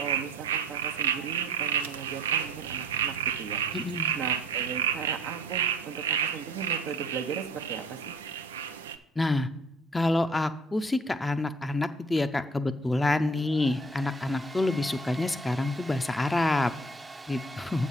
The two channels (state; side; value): normal; both; correlation 0.52